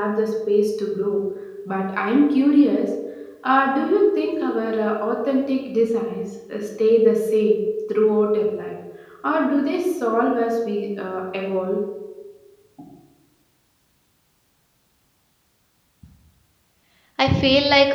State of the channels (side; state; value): both; identical; correlation 1.00